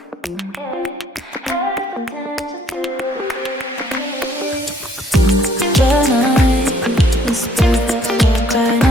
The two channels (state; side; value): normal; both; correlation 0.62